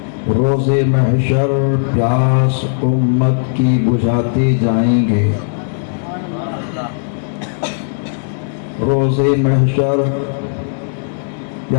روز محشر پیاس امت کی بجھاتے جائیں گے، روز محشر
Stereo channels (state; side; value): silent; right; 58 dB below the other